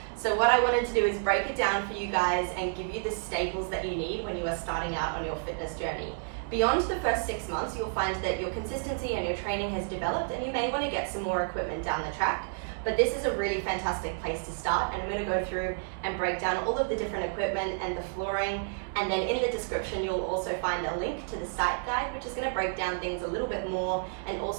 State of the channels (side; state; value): left; silent; digital silence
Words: So what I wanted to do is break it down for you guys and give you the staples that you need when you are starting out on your fitness journey. Beyond the first 6 months, you'll find that your consistency and your training has developed and you may want to get some more equipment down the track. But this is a really fantastic place to start, and I'm going to go through and break down all of the different equipment and the flooring, and then in the description you'll also find a link to the site guide, which is going to break down things a little bit more and